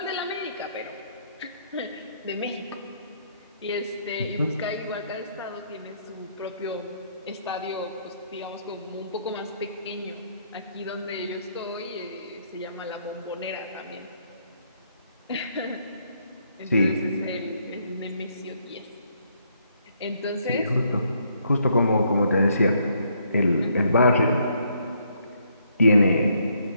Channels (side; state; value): both; inverted; correlation -0.71